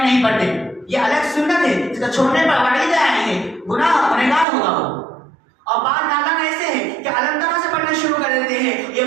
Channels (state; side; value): drops out; left; at 4.5 s